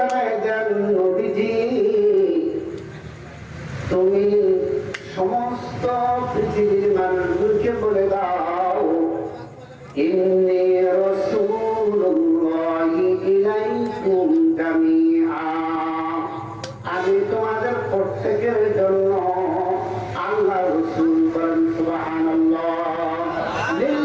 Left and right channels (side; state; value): both; identical; correlation 1.00